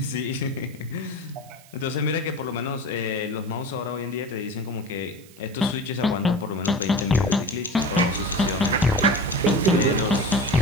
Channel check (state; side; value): noise; right; hiss, 24 dB below the sound